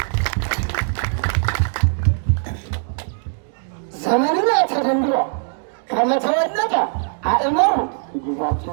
ዘመንነ ተደንግሎ ከመተወለደ አእመሩ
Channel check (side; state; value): left; silent; 65 dB below the other